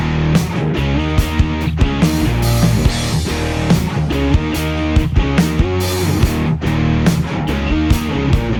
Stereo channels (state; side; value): identical; both; correlation 1.00